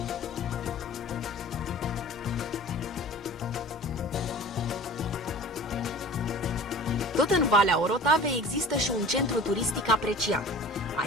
Tot în Valea Orotavei există și un centru turistic apreciat.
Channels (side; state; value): both; normal; correlation 0.41